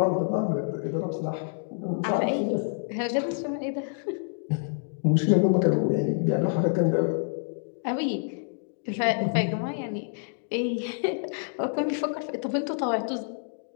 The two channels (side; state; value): right; silent; digital silence